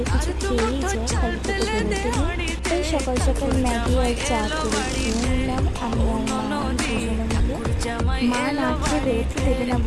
কিছু খেয়েই যা, খালি পেটে বেরোতে নেই। তাই সকাল সকাল ম্যাগি আর চা করে খেয়ে নিলাম আমি আর মা দুজনে মিলে। মা না খেয়ে বেরোতে দেবে না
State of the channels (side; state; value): both; identical; correlation 1.00